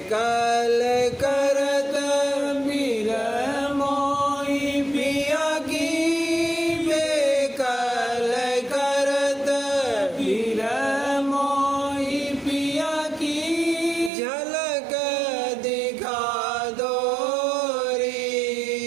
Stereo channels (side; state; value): left; drops out; at 14.1 s